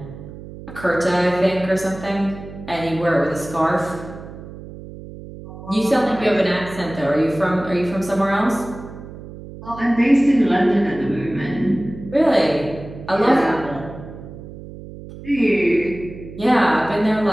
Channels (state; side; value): noise; right; hum, 14 dB below the sound